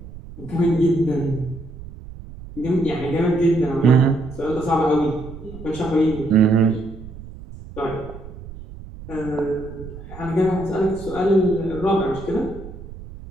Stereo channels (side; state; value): right; noise; rumble, 14 dB below the sound